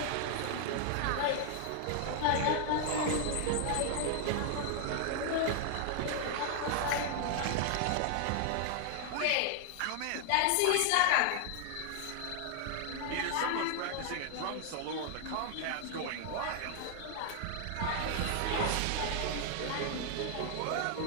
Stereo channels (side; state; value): both; different; correlation 0.00